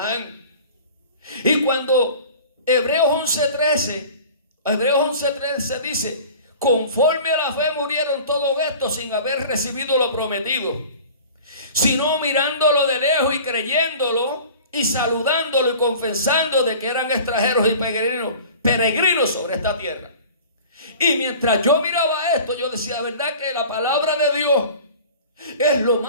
Y cuando Hebreos 11:13, Hebreos 11:13 dice: conforme a la fe murieron todos estos sin haber recibido lo prometido, sino mirándolo de lejos y creyéndolo y saludándolo y confesando de que eran extranjeros y peregrinos sobre esta tierra. Y mientras yo miraba esto, yo decía, la verdad que la palabra de Dios es lo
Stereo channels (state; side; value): inverted; both; correlation -0.42